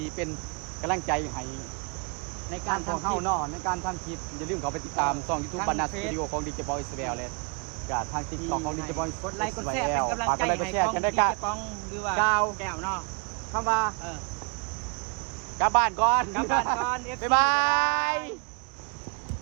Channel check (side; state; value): left; quieter; 34.4 dB